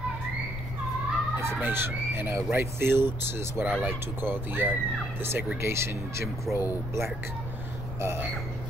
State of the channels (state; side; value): noise; left; rumble, 7 dB below the sound